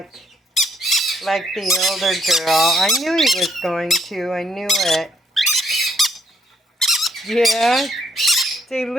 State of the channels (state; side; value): normal; both; correlation 0.71